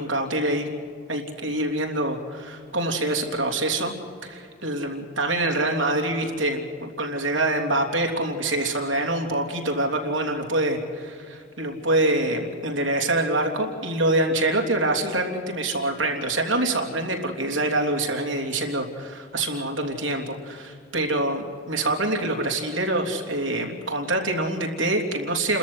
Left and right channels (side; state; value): both; normal; correlation -0.10